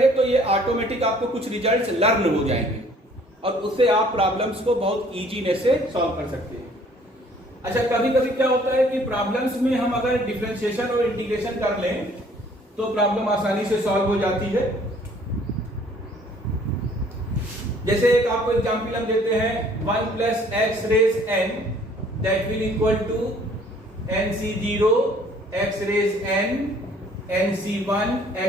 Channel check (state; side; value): normal; both; correlation 0.57